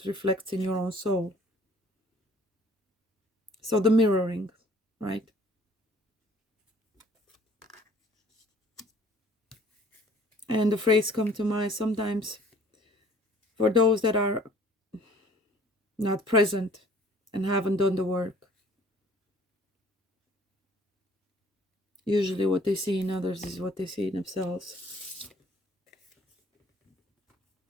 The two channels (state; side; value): normal; both; correlation 0.54